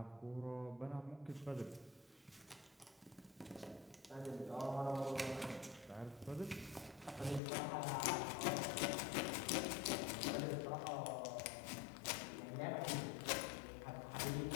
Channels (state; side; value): drops out; right; at 7.4 s